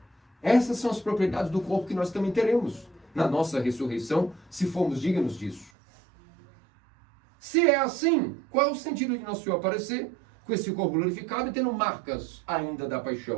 Essas são as propriedades do corpo que nós também teremos na nossa ressurreição, se formos dignos disso. Se é assim, qual é o sentido de Nosso Senhor aparecer com esse corpo glorificado e tendo marcas ainda da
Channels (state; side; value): drops out; left; at 5.7 s